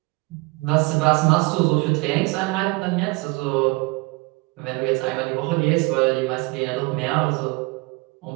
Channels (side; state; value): left; quieter; 25.7 dB